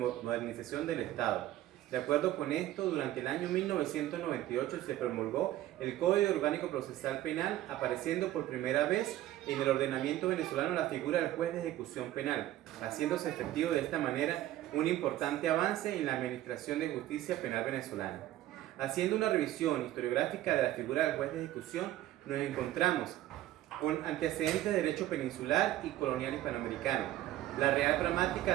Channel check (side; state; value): left; quieter; 14.3 dB